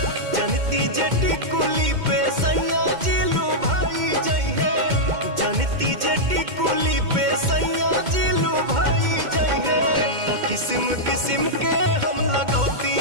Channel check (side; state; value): left; late; 2.1 ms